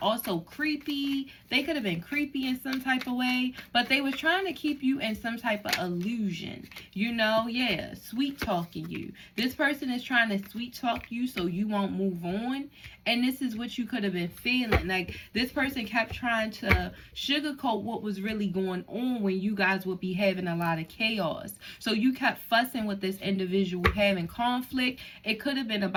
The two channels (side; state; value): both; identical; correlation 1.00